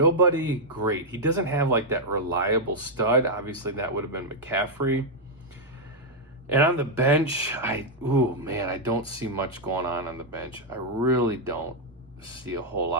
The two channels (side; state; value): both; normal; correlation -0.02